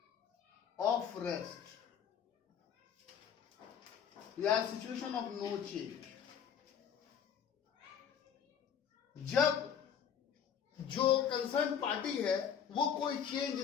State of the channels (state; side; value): quieter; right; 8.1 dB